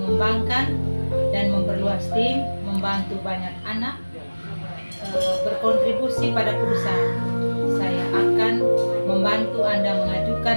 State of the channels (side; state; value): both; inverted; correlation -1.00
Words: dan memperluas tim, membantu banyak anak berkontribusi pada perusahaan. Saya akan membantu Anda mengajukan